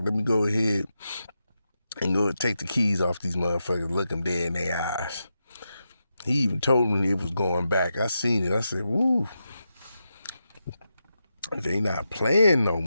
let me go ahead and go take the keys off these motherfuckers, look them dead in their eyes. He even told me it was going back. I seen it. I said, woo, they not playing no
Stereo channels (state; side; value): inverted; both; correlation -0.88